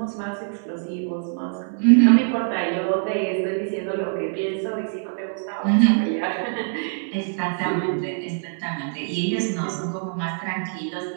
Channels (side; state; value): left; silent; digital silence